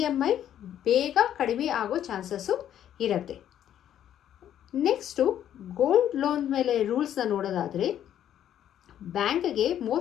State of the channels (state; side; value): quieter; right; 10.7 dB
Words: ಬೇಗ ಕಡಿಮೆ ಆಗೋ ಚಾನ್ಸಸ್ಸು ಇರುತ್ತೆ. ನೆಕ್ಸ್ಟು ಗೋಲ್ಡ್ ಲೋನ್ ಮೇಲೆ ರೂಲ್ಸ್ನ ನೋಡೋದಾದರೆ ಬ್ಯಾಂಕ್ಗೆ